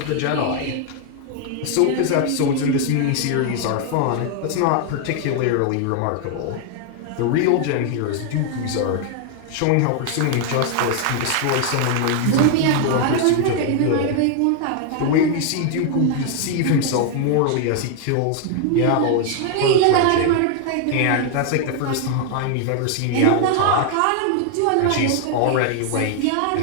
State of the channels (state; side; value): different; both; correlation 0.00